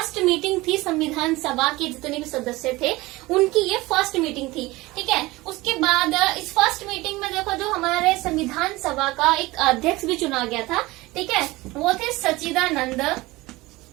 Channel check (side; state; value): left; quieter; 20.6 dB